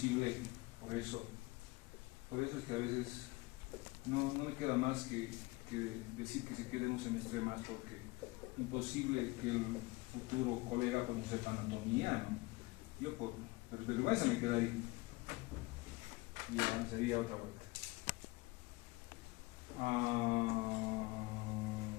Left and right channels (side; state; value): right; quieter; 22.7 dB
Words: por eso es que a veces no me queda más que decir que se quede un semestre más, porque imposible que el futuro colega pues no sepa anatomía, ¿no? Yo por vergüenza me quedaría y ya sería otra vuelta.